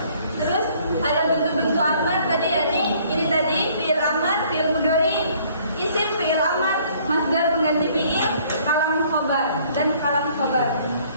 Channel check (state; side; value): inverted; both; correlation -0.60